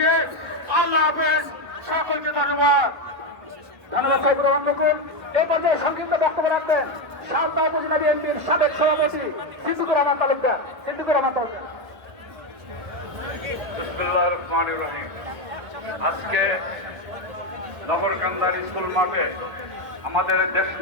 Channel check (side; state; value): left; late; 1.4 ms